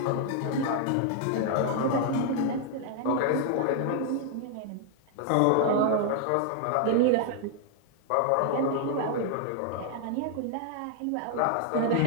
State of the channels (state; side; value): different; both; correlation 0.00